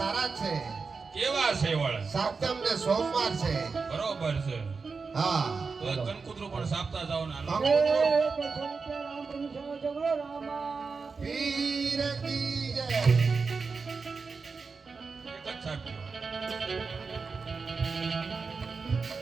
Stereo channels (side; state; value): left; quieter; 4.7 dB